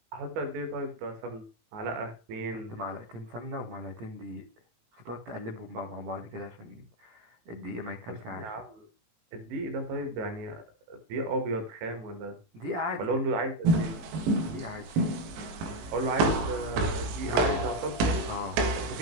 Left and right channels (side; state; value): left; late; 19 ms